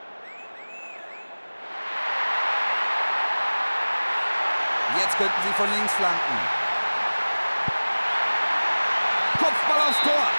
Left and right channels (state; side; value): inverted; both; correlation -1.00